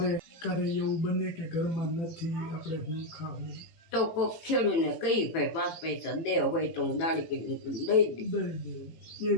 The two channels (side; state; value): right; late; 18 ms